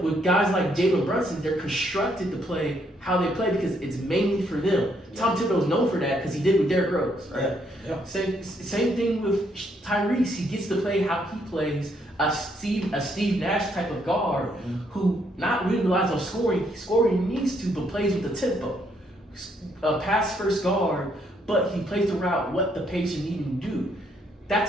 with guys like Jalen Brunson, they're constructed to play how they play because it's mainly for them. Yeah. Tom Thibodeau's known for that because he did with Derrick Rose, right? Yeah. Same thing with Tyrese. He gets to play how he plays, a Steve Nash type of guard who not really relies on scoring. Scoring needs to, but plays with the tempo. A pass first guard, but he plays throughout what the patient needs him to do.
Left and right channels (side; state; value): both; normal; correlation 0.72